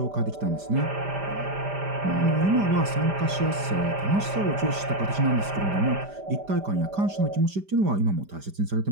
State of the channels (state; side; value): late; left; 5.0 ms